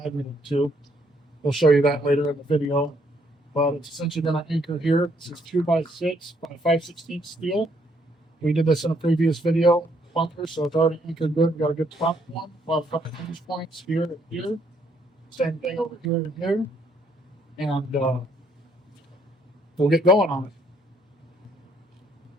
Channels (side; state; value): both; normal; correlation 0.69